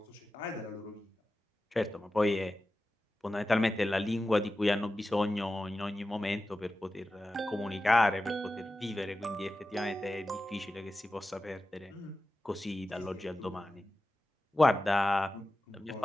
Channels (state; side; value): normal; both; correlation 0.93